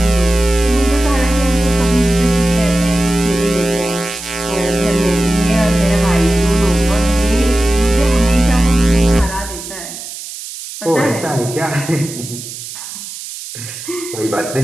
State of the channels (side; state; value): right; noise; hiss, 11 dB below the sound